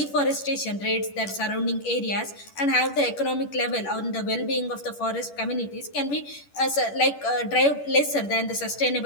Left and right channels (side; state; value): right; late; 10 ms